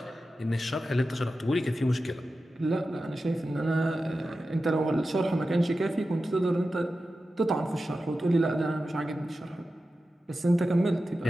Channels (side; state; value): both; normal; correlation 0.93